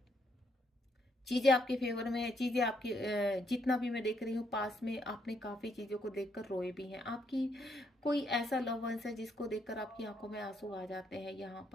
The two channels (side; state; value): both; normal; correlation 0.74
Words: चीजें आपके फेवर में है, चीजें आपकी जितना भी मैं देख रही हूँ पास में आपने काफी चीजों को देखकर रोए भी हैं। आपकी कोई ऐसा लव वंस है जिसको देखकर आपकी आंखों में आंसू आ जाते हैं यहाँ